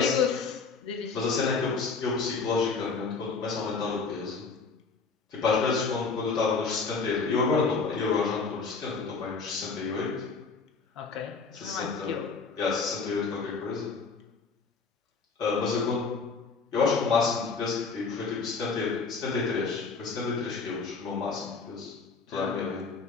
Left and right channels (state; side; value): quieter; right; 4.7 dB